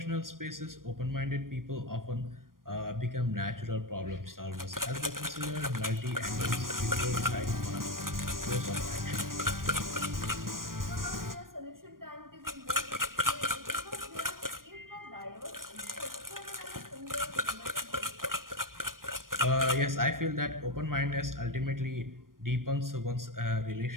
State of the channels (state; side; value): late; left; 0.91 ms